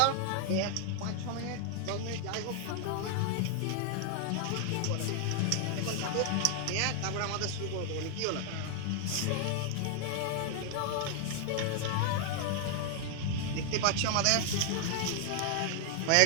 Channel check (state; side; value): different; both; correlation 0.00